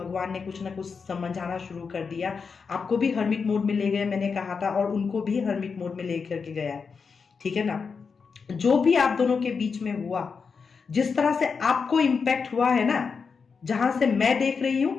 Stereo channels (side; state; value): right; quieter; 5.4 dB